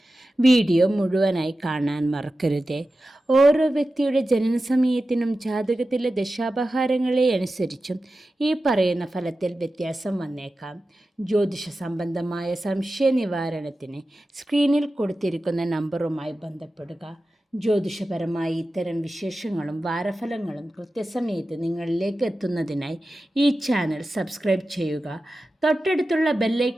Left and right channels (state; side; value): normal; both; correlation 0.94